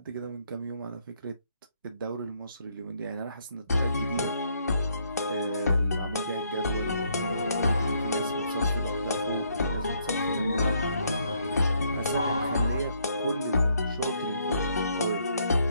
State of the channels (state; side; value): inverted; both; correlation -0.71